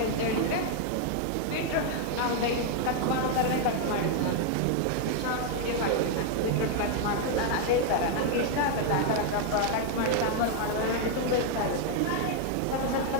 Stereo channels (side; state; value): both; different; correlation 0.00